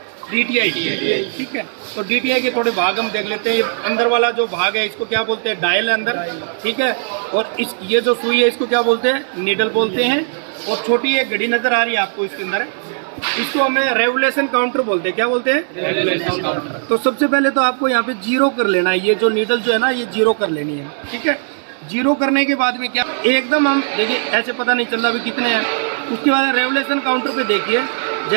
DTI, ठीक है। तो DTI के थोड़े भाग हम देख लेते हैं। ये अंदर वाला जो भाग है इसको क्या बोलते हैं, डायल है अंदर, ठीक है। और ये जो सुई है इसको क्या बोलते हैं, नीडल बोलते हैं। और छोटी एक घड़ी नजर आ रही है आपको इसके अंदर, इसको हमें रेवोल्यूशन काउंटर बोलते हैं। क्या बोलते हैं, रेवोल्यूशन काउंटर। तो सबसे पहले तो आपको यहाँ पे 0 कर लेना है। ये जो नीडल जो है ना, ये 0 कर लेनी है, ठीक है। 0 करने के बाद में क्या, एकदम हम देखिए ऐसे पता नहीं चल रहा भी कितने हैं। उसके बाद रेवोल्यूशन काउंटर पे देखिए,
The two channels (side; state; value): left; silent; digital silence